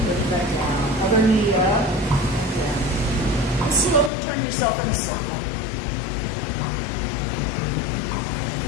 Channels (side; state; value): right; drops out; at 4.1 s